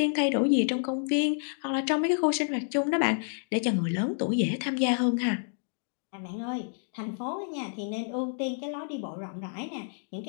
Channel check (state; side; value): silent; right; digital silence